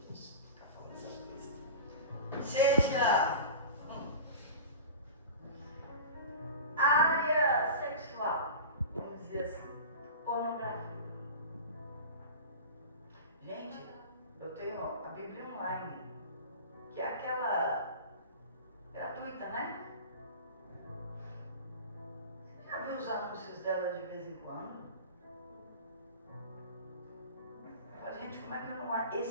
Deus, ficar falando online, que é aquela gratuita, né? Você já viu os anúncios dela de vez em quando? Eu falo, gente, como é que eu não...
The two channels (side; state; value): both; inverted; correlation -0.33